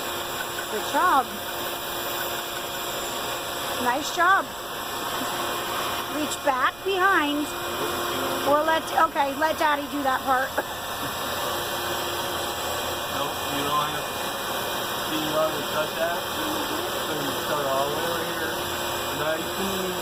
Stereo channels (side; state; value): right; noise; rumble, 19 dB below the sound